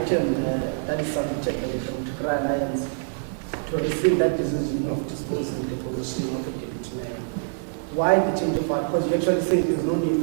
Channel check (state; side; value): silent; left; 62 dB below the other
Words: that is submitted by the Patriotic Alliance to receive that decision of disposing the position of the deputy mayor. Why the change of heart? Because you actually say there's no need